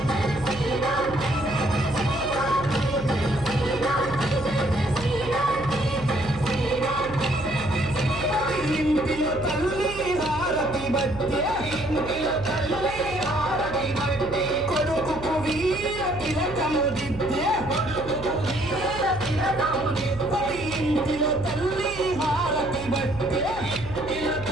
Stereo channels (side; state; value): right; noise; hum, 13 dB below the sound